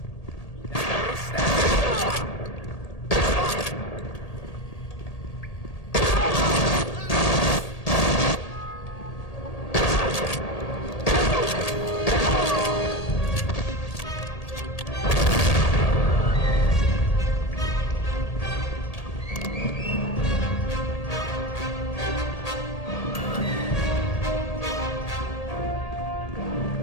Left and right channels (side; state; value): right; late; 1.8 ms